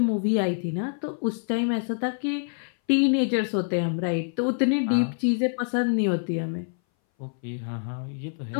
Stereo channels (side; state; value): right; silent; 59 dB below the other